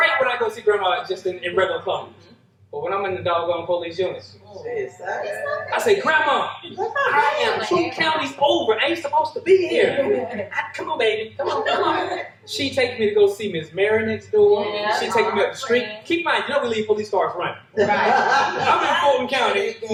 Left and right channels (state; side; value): identical; both; correlation 1.00